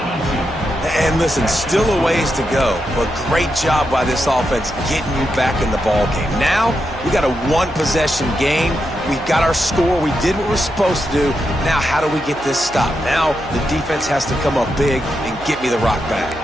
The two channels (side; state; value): right; noise; hum, 19 dB below the sound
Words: And listen, still a ways to go, but great job by this offense getting you back in the ball game. Now, we got a 1-possession game. We got our score. We did what we're supposed to do. Now, how do we get this stopped? Now, the defense has to come up big and get me the rock back.